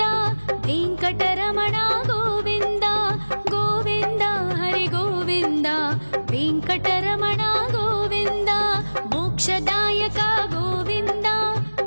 ವೆಂಕಟರಮಣ ಗೋವಿಂದ ಗೋವಿಂದ ಹರಿ ಗೋವಿಂದ ವೆಂಕಟರಮಣ ಗೋವಿಂದ ಮೋಕ್ಷದಾಯಕ ಗೋವಿಂದ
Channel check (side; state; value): both; inverted; correlation -1.00